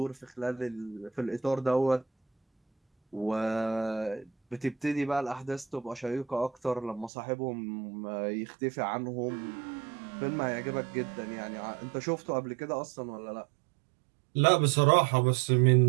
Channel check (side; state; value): left; drops out; at 7.1 s